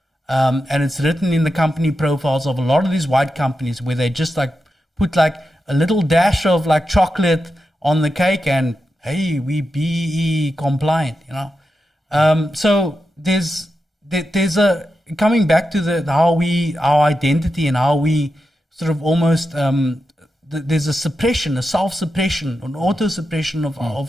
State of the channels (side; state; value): both; normal; correlation 0.89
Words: and it's written in the company profiles of a lot of these white companies where they just like put like a little dash of like chocolate on the cake, and hey, we BEE compliant, So there's a coming back to our identity and how we sort of almost there's a suppression, a self-suppression, an auto-suppression